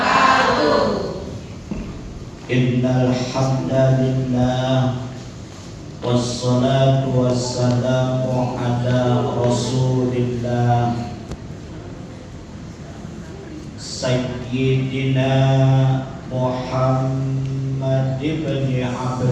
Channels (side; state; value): both; identical; correlation 1.00